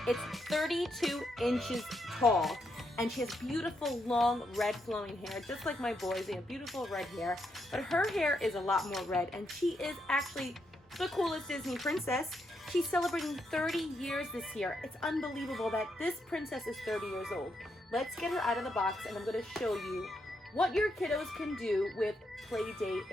It's 32 inches tall and she has beautiful long red flowing hair, just like my boys. They have beautiful red hair, but her hair is a lot more red and she is actually the coolest Disney princess. She's celebrating 30 years this year. It's unbelievable that this princess is 30 years old. Let's get her out of the box and I'm going to show you what your kiddos can do with Playdate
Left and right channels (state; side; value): normal; both; correlation 0.80